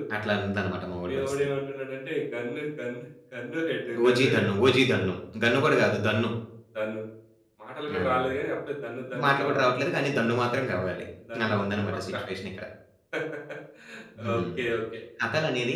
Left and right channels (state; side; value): identical; both; correlation 1.00